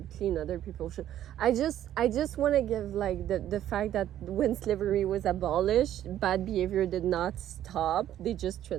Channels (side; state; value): left; quieter; 11.8 dB